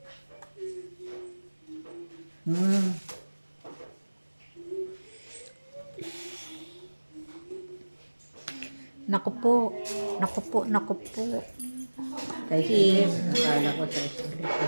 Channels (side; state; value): both; inverted; correlation -1.00